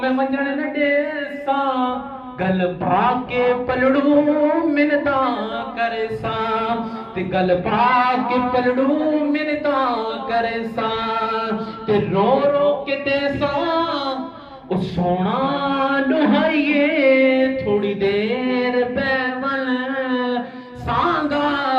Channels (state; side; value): identical; both; correlation 1.00